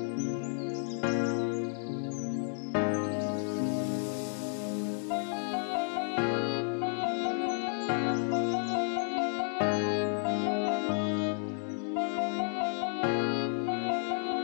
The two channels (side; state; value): right; silent; 56 dB below the other